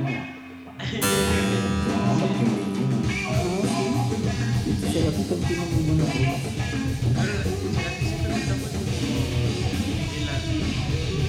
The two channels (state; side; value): identical; both; correlation 1.00